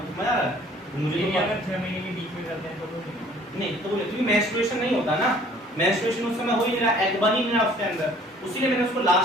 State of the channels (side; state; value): both; normal; correlation 0.54